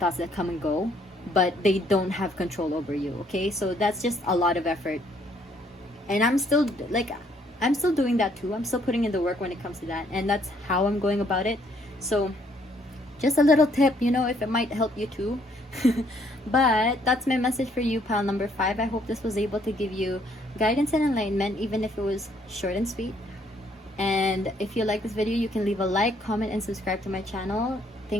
that come and go, but they don't have control over you. Okay, so that's just a lot of effort, and I'm still doing that too. I'm still putting in the work when it comes to that, and that's how I'm going about it. So just a little tip, you know, if it might help you too. But that's my message for you, pile number 5. I hope this was able to give you guidance and enlightenment, even if it was short and sweet. And if you like this video, you can leave a like, comment, and subscribe to my channel.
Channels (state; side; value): normal; both; correlation 0.66